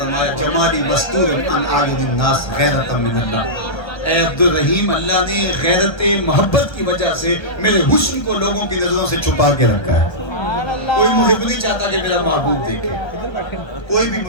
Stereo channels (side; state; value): right; late; 1.3 ms